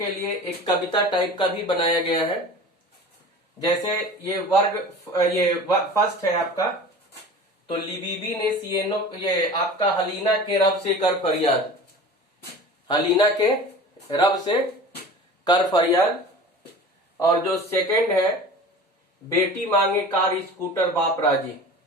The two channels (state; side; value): normal; both; correlation 0.38